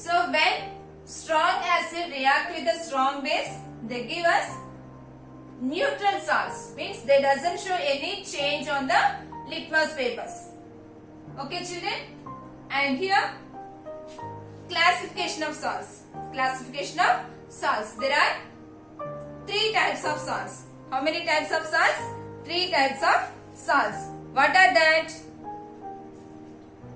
So when strong acid react with the strong base, they give us neutral salts. Means they doesn't show any change on the litmus papers. Okay, children? And here, classification of salts. There are 3 types of salts. How many types of salts? three types of salts. What are that?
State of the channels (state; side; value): identical; both; correlation 1.00